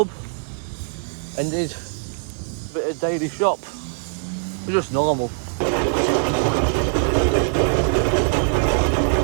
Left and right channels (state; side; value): silent; left; 64 dB below the other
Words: and did a bit of daily shop. We're just normal.